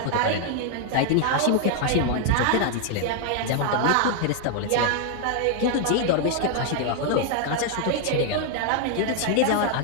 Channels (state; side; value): different; both; correlation 0.00